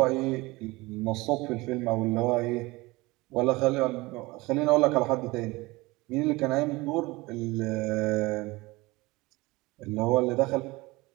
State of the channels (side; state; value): left; quieter; 22.1 dB